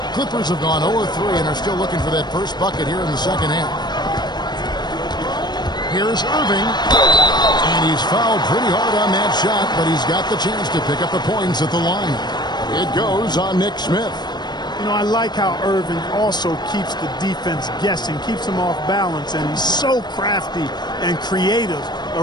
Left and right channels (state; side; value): late; right; 0.21 ms